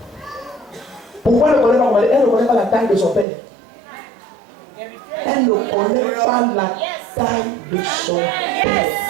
Pourquoi elle ne connaît pas commander? Elle ne connaît pas la taille de son père. Elle ne connaît pas la taille de son père.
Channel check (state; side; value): drops out; left; at 3.2 s